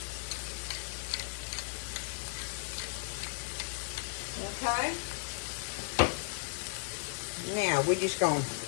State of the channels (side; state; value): right; silent; digital silence